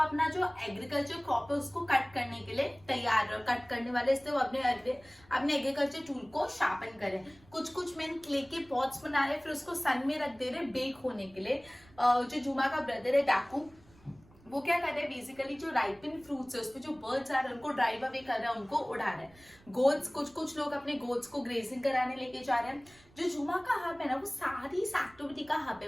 अपना जो एग्रीकल्चर क्रॉप है उसको कट करने के लिए तैयार, कट करने वाले, इसलिए वो अपने एग्रीकल्चर टूल को शार्पन करे। कुछ मेन क्ले के पॉट्स बना रहे, फिर उसको सन में रख दे रहे बेक होने के लिए। जो जुमा का ब्रदर है डाकू, वो क्या कर रहे हैं, बेसिकली जो राइपिन फ्रूट्स है उसपे जो बर्ड्स आ रहे हैं उनको ड्राइव अवे कर रहे हैं, उनको उड़ा रहे हैं। गोट्स, कुछ लोग अपने गोट्स को ग्रेजिंग कराने लेके जा रहे हैं। जो जुमा का हब है ना, वो सारी इस एक्टिविटी का हब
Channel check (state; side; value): noise; right; rumble, 27 dB below the sound